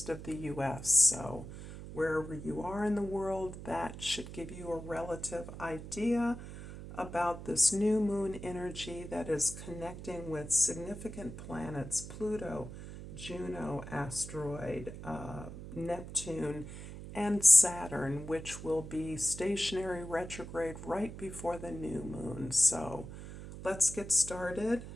of the U.S. So wherever you are in the world, that should give you a relative idea about this new moon energy that is connecting with significant planets, Pluto, Juno asteroid, Neptune, and Saturn, which will be stationary retrograde right before the new moon. So let's get started,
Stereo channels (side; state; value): right; noise; hum, 11 dB below the sound